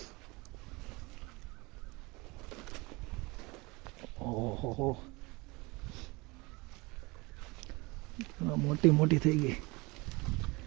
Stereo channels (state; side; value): quieter; left; 24.8 dB